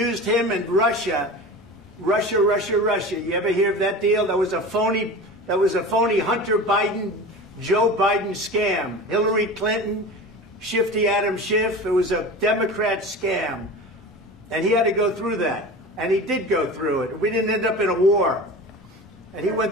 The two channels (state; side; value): normal; both; correlation 0.33